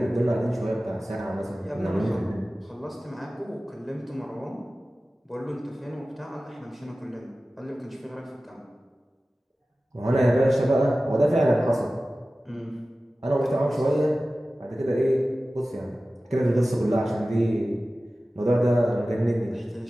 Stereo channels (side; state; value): both; normal; correlation 0.96